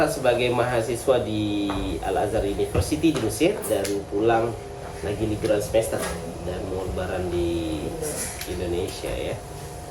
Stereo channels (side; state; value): both; identical; correlation 1.00